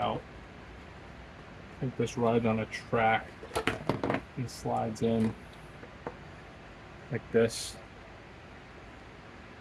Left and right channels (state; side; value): identical; both; correlation 1.00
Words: I think this rides on a track and slides in like this.